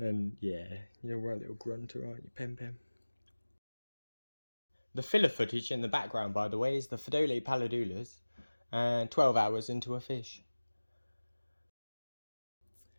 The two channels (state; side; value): inverted; both; correlation -1.00